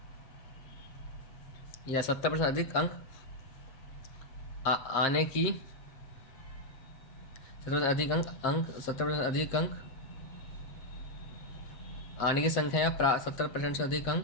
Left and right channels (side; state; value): right; late; 7.5 ms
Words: या 70% अधिक अंक आने की 70% अधिक अंक आने की संख्या, या 70% से अधिक